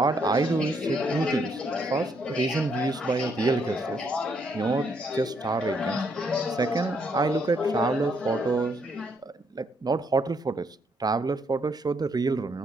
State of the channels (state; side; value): normal; both; correlation 0.73